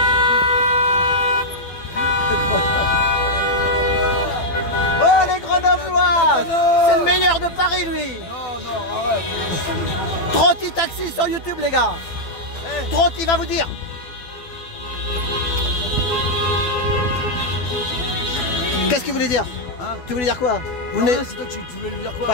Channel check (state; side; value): late; right; 12 ms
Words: C'est le meilleur de Paris, lui. Non, arrête. Trotti Taxi sur YouTube, les gars. Hey. Trotti va vous dire. Qu'est-ce qu'il voulait dire, hein? Tu voulais dire quoi? C'est toi, tu voulais lui dire quoi?